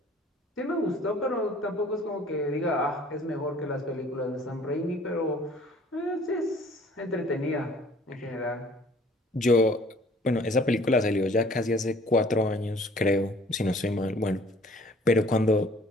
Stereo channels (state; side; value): normal; both; correlation 0.54